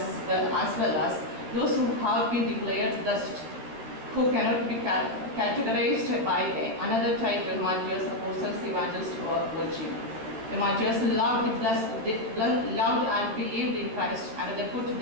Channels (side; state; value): left; late; 13 ms